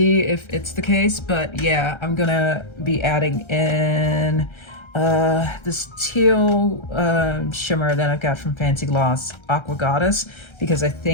if it's the case. But yeah, I'm gonna be adding in this teal shimmer that I've got from Fancy Gloss, Aqua Goddess, because I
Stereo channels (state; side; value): late; right; 1.3 ms